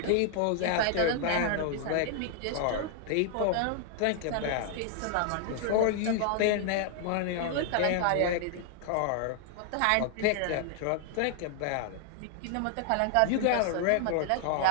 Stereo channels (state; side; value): different; both; correlation 0.00